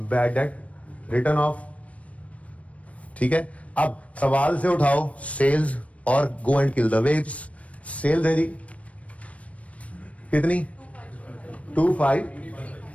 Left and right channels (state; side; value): late; right; 0.065 ms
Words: रिटर्न ऑफ, ठीक है। अब सवाल से उठाओ सेल्स और go and kill the waves. Sales है जी कितनी 25।